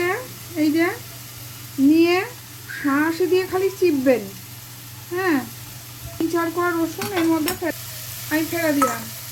এই যে নিয়ে হাঁসি দিয়ে খালি চিপবেন। হ্যাঁ, 3-4 কোয়া রসুন এর মধ্যে আমি ফেলে দিলাম।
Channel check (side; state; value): both; identical; correlation 1.00